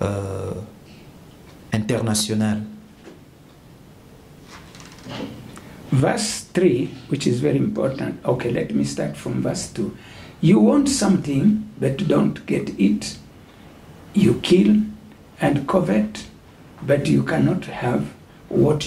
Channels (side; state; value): both; identical; correlation 1.00